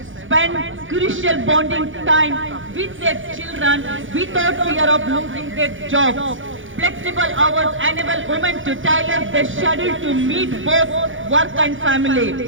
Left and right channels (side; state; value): left; late; 0.57 ms